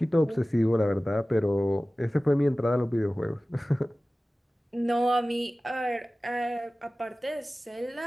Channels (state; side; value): normal; both; correlation 0.97